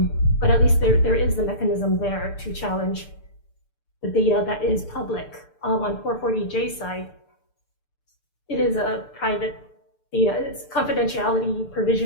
But at least there is the mechanism there to challenge the data that is public. On 440J side, it is a private data. It's confidentiality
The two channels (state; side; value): late; right; 6.8 ms